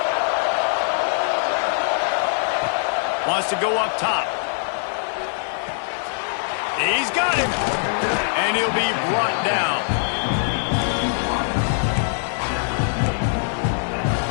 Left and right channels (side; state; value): right; silent; 62 dB below the other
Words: Wants to go up top. He's got him. And he'll be brought down.